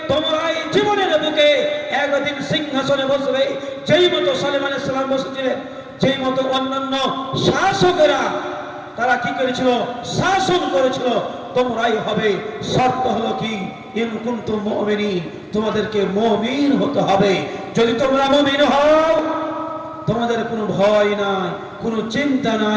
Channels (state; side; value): identical; both; correlation 1.00